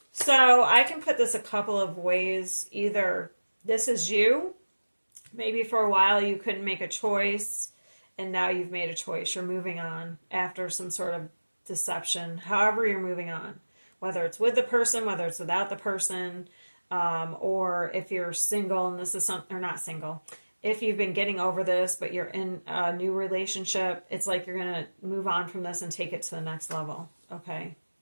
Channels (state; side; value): inverted; both; correlation -1.00